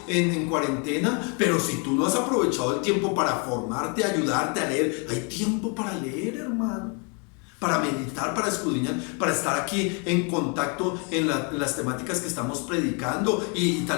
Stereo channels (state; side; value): quieter; right; 35.3 dB